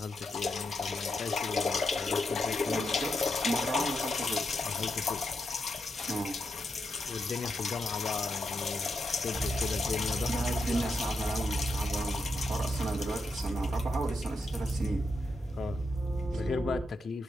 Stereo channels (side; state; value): both; normal; correlation 0.84